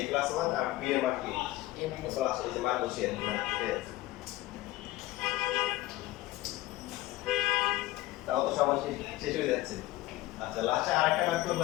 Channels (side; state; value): right; quieter; 17.4 dB